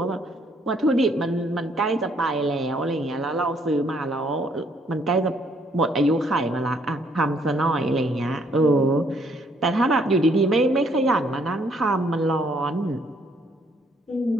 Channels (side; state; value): both; normal; correlation 0.67